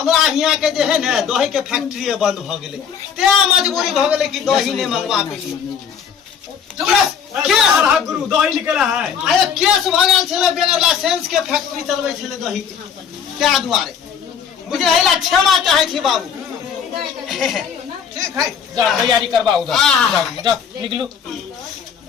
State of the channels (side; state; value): right; quieter; 7.4 dB